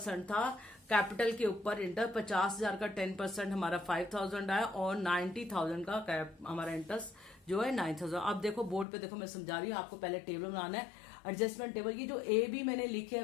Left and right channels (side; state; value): right; drops out; at 8.8 s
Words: था कैपिटल के ऊपर। इंटर 50,000 का 10% हमारा 5,000 आया और 90,000 का हमारा इंटरेस्ट जो है 9,000। अब देखो बोर्ड पे देखो, मैं समझा रही हूँ आपको। पहले टेबल बनाना है, एडजस्टमेंट टेबल। ये जो ए बी मैंने लिखे है